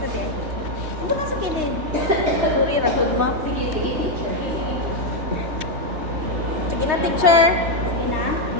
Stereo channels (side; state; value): left; late; 3.2 ms